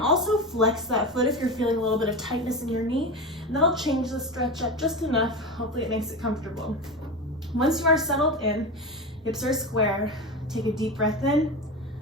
flex that foot if you're feeling a little bit of tightness in your knee, and that'll change the stretch up just enough. Hopefully it makes it comfortable. Once you are settled in, hips are square, take a deep breath in.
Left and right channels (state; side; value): normal; both; correlation 0.23